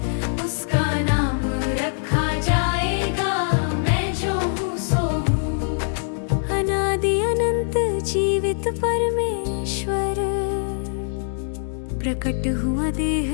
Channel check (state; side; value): silent; right; digital silence